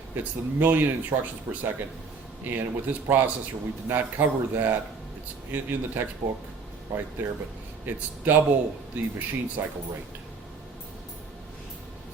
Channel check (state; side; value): quieter; left; 4.8 dB